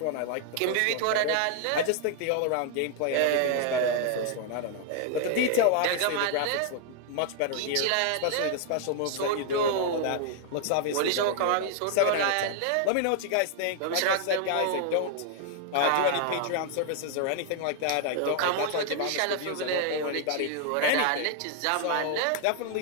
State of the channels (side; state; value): both; different; correlation 0.00